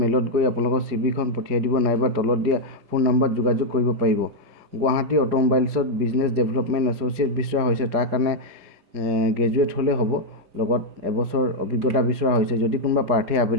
মেইলত গৈ আপোনালোকৰ CV খন পঠিয়াই দিব, নাইবা তলত দিয়া ফোন নম্বৰত যোগাযোগ কৰিব পাৰিব। গুৱাহাটী অটোমোবাইলছত বিজনেছ ডেভেলপমেণ্ট এছ'চিয়েট বিচৰা হৈছে, তাৰ কাৰণে গ্ৰেজুৱেট হ'লে হ'ব, লগত 1 বছৰ অভিজ্ঞতা বিচৰা হৈছে। যদি কোনোবা প্ৰাৰ্থী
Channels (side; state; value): left; late; 4.9 ms